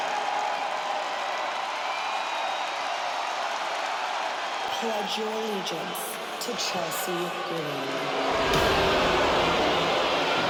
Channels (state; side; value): identical; both; correlation 1.00